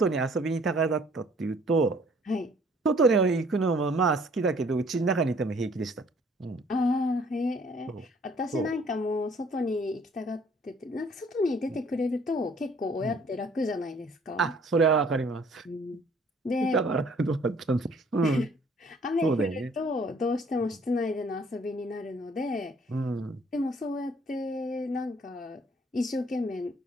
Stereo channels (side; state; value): both; normal; correlation 0.59